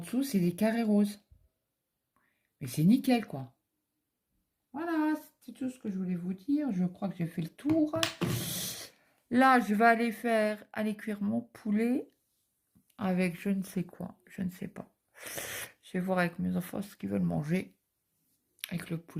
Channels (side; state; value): both; identical; correlation 1.00